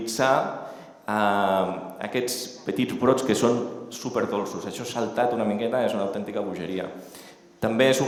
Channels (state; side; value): identical; both; correlation 1.00